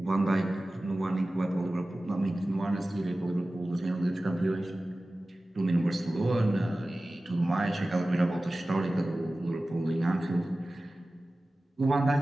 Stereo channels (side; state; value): both; normal; correlation 0.96